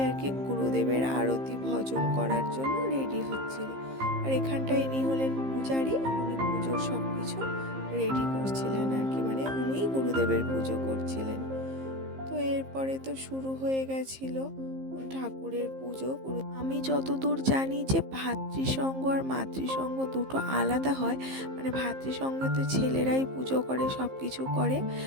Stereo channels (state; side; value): late; left; 15 ms